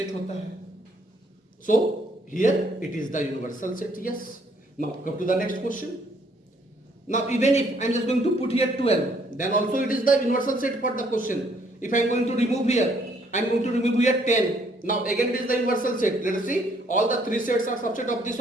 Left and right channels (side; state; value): both; normal; correlation 0.66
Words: होता है. So here it is the universal set. Yes, now come to the next question. Now even if I am just going to put here 12, then also it is the universal set for the question. If I am going to remove here, I am going to remove here 10. Now again it is the universal set. Let us see, all the three sets are subset of this